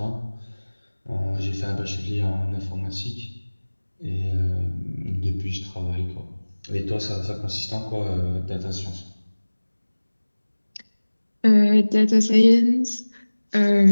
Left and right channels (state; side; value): inverted; both; correlation -1.00